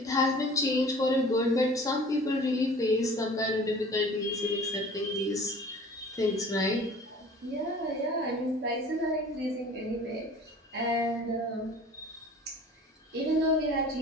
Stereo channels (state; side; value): normal; both; correlation 0.46